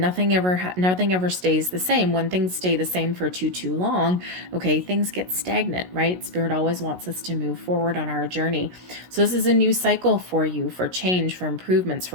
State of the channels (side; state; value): left; late; 16 ms